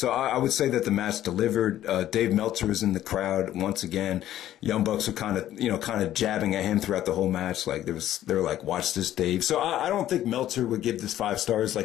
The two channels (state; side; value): quieter; right; 12.6 dB